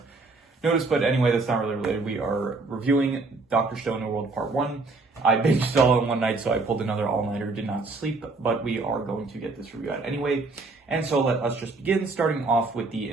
noticed, but anyway, that's not really related. We are reviewing Dr. Stone, New World Part 1. I binged it all in one night, so I pulled another all-nighter, did not sleep, but we are going to get this review out anyway. And so let us just begin, starting off with the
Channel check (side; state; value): left; quieter; 3.6 dB